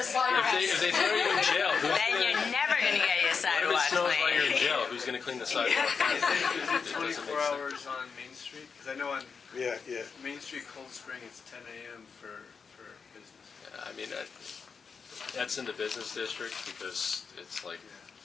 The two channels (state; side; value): quieter; right; 5.6 dB